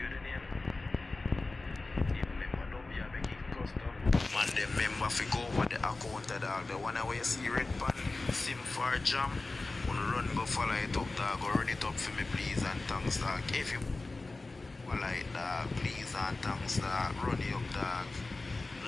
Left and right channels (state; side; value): quieter; right; 3.3 dB